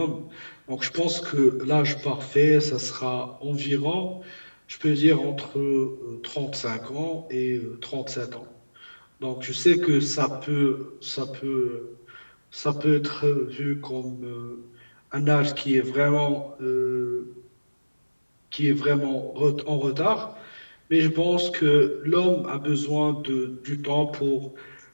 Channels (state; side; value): inverted; both; correlation -1.00